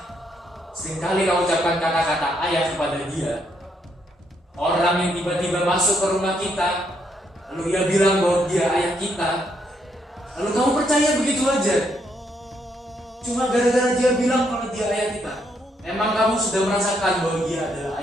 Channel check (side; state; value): both; normal; correlation 0.74